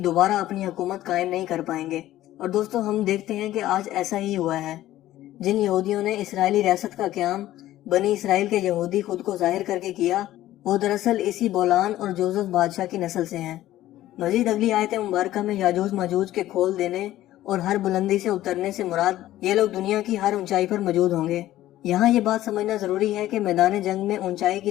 اپنی حکومت قائم نہیں کر پائیں گے۔ اور دوستو، ہم دیکھتے ہیں کہ آج ایسا ہی ہوا ہے۔ جن یہودیوں نے اسرائیلی ریاست کا قیام بنی اسرائیل کے یہودی خود کو ظاہر کر کے کیا، وہ دراصل اسی بولان اور جوزف بادشاہ کی نسل سے ہیں۔ مزید اگلی آیت مبارکہ میں یاجوج ماجوج کے کھول دینے اور ہر بلندی سے اترنے سے مراد یہ لوگ دنیا کی ہر اونچائی پر موجود ہوں گے۔ یہاں یہ بات سمجھنا ضروری ہے کہ میدان جنگ میں اونچائی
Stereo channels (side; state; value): right; quieter; 14.4 dB